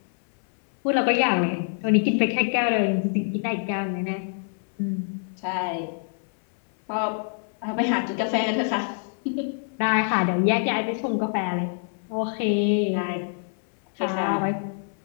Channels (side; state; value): right; silent; 61 dB below the other